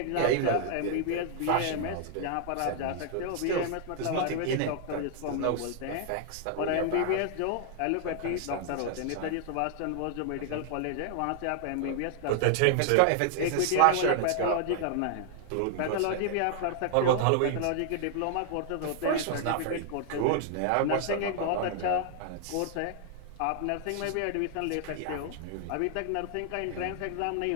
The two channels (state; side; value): different; both; correlation 0.00